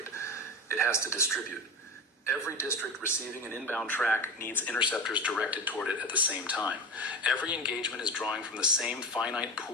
It has to distribute. Every district receiving an inbound track needs interceptors directed toward it at the same time. Every engagement is drawing from the same finite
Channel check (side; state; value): both; normal; correlation 0.24